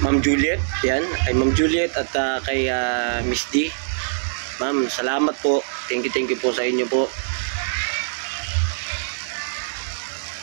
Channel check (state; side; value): silent; left; 64 dB below the other